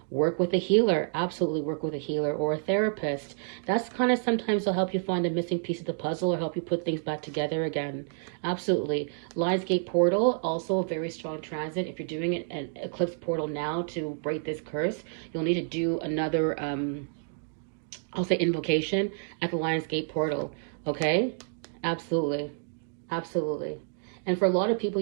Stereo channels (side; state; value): left; silent; digital silence